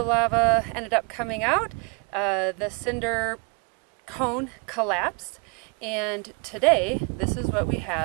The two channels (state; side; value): quieter; left; 34.0 dB